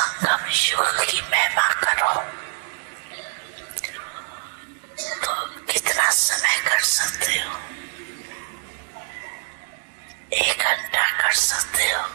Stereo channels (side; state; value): left; silent; digital silence